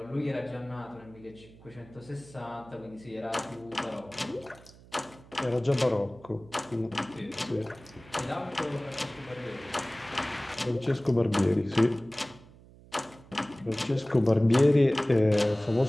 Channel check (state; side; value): noise; right; hum, 23 dB below the sound